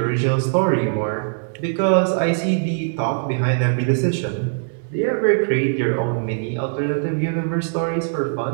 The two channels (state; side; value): silent; left; digital silence